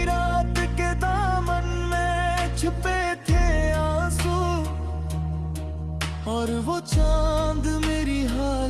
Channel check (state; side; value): identical; both; correlation 1.00